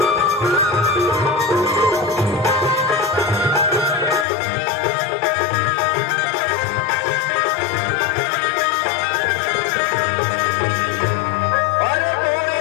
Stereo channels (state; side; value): drops out; right; at 4.2 s